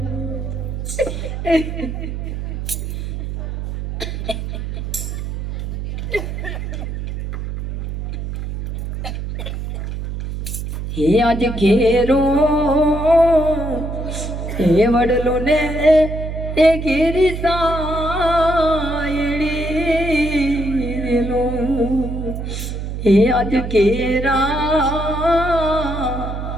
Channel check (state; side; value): noise; right; hum, 5 dB below the sound